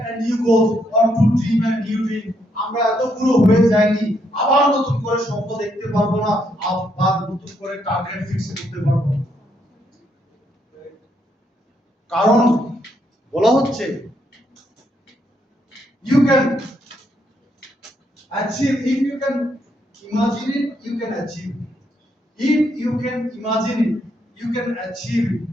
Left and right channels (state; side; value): normal; both; correlation 0.75